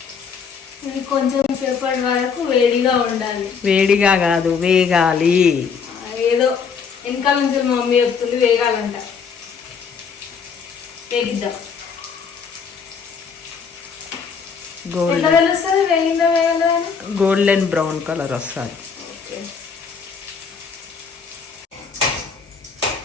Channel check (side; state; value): right; quieter; 6.0 dB